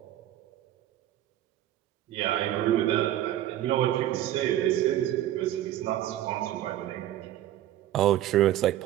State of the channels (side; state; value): left; quieter; 13.1 dB